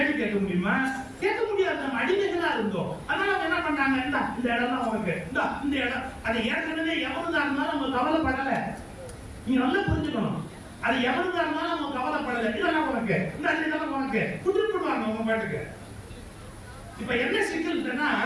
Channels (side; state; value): both; identical; correlation 1.00